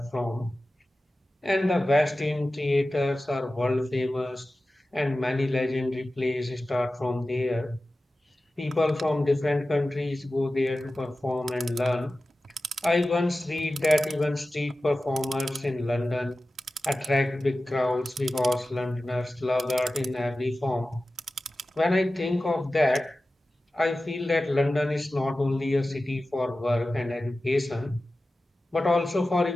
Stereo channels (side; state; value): both; normal; correlation 0.95